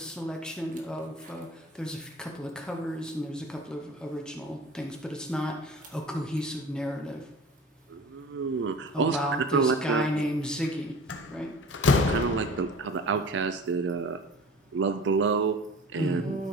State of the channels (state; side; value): normal; both; correlation 0.41